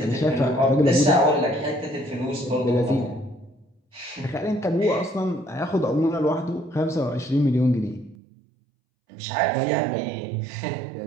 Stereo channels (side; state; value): left; drops out; at 8.2 s